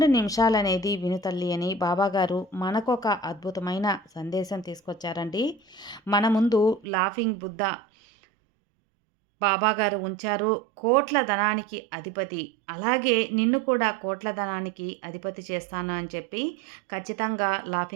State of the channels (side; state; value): left; drops out; at 6.9 s